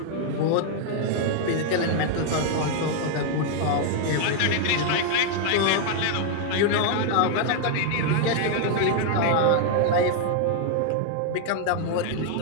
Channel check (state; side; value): different; both; correlation 0.00